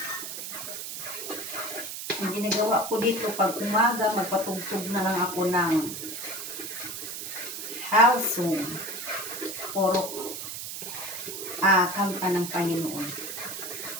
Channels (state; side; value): noise; right; hiss, 7 dB below the sound